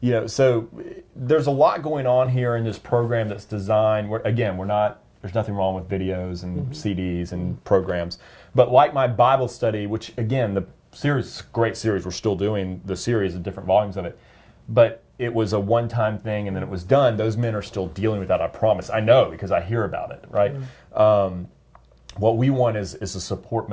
in. So there's a lot going on here in this program that's designed. There's nothing wrong with videos and CDs and programs, but like my Bible study, which again, the series, great series, we're still doing the series of different volumes of it, but it was a one-time thing and then it was done. Those men are still dealing with that, I promise. I know because I hear about it, right? What we want is a support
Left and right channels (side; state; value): both; identical; correlation 1.00